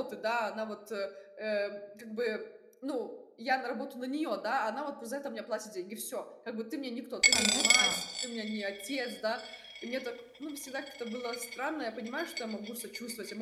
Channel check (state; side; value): identical; both; correlation 1.00